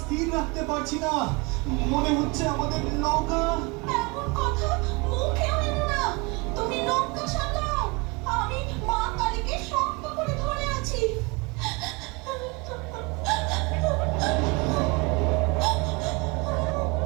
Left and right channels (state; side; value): quieter; left; 27.9 dB